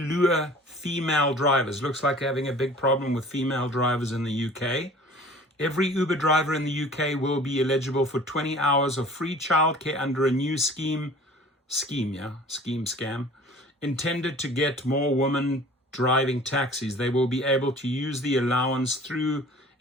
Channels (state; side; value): normal; both; correlation 0.46